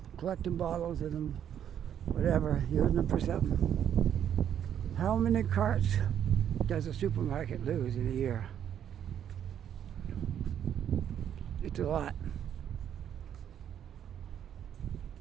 collecting bottles of them, whatever, using them for something. How many carts does a supermarket lose in a year? It's a lot.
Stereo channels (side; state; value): left; quieter; 9.5 dB